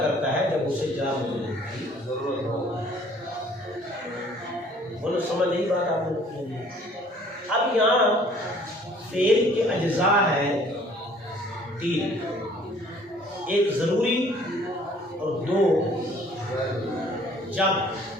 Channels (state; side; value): normal; both; correlation 0.56